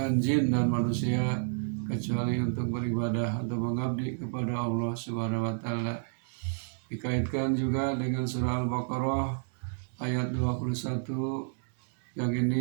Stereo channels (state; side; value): silent; left; digital silence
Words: jin dan manusia kecuali untuk beribadah, untuk mengabdi kepada Allah Subhanahu wa taala. Dikaitkan juga dengan surah Al-Baqarah ayat 21 yang